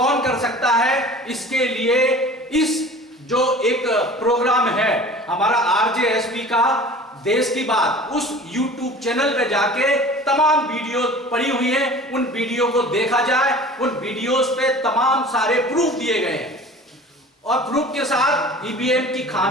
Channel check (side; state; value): both; normal; correlation 0.42